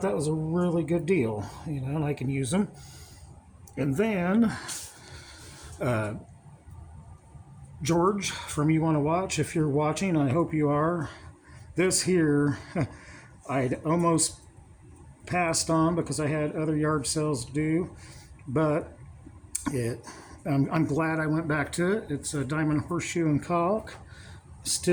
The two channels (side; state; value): both; identical; correlation 1.00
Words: that was a really good deal, you know, and I can use them. And then George from You Want to Watch, if you're watching, I hope you are. This here, I'd almost passed on because I had other yard sales to do, but I'm glad I went back to it. It's a diamond horseshoe and caulk,